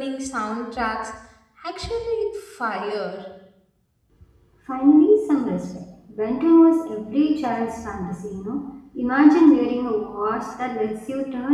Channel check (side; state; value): both; identical; correlation 1.00